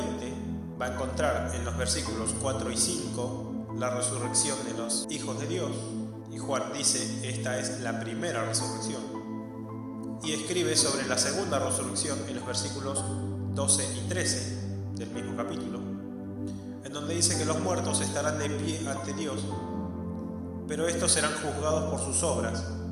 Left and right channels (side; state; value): both; identical; correlation 1.00